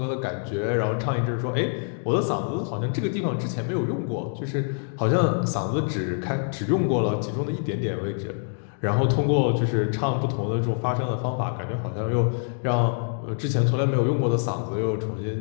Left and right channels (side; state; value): right; silent; digital silence